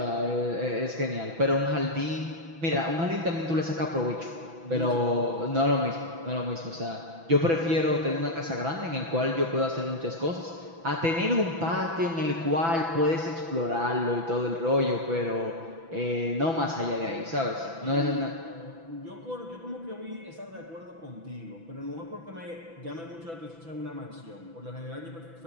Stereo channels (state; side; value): late; left; 6.0 ms